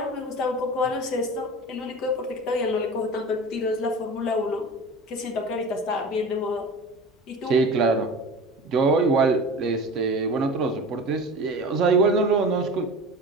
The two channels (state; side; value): normal; both; correlation 0.35